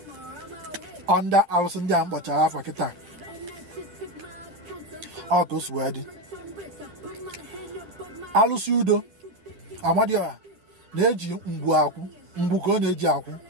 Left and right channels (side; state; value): left; late; 10 ms